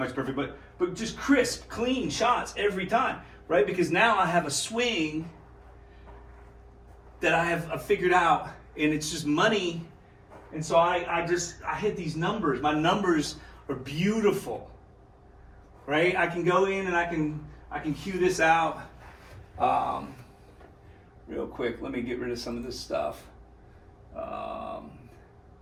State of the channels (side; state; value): both; identical; correlation 1.00